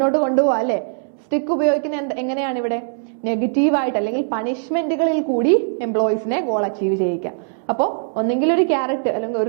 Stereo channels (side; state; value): left; silent; 65 dB below the other